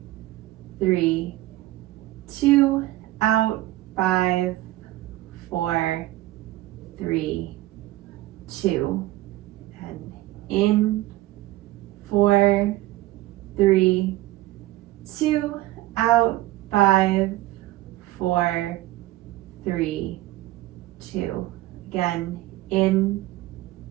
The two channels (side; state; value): left; quieter; 16.7 dB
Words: 3, 2, out, 5, 4, 3, 2, and in, 4, 3, 2, out, 5, 4, 3, 2. Again, in,